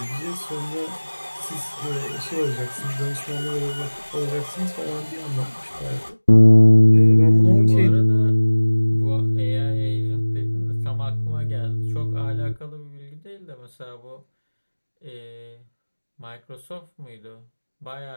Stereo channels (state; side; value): inverted; both; correlation -1.00